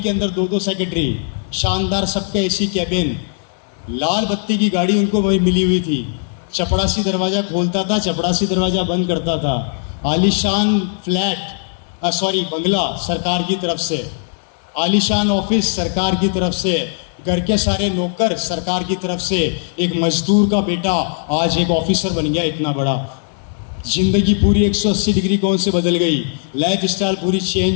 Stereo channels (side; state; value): right; silent; 66 dB below the other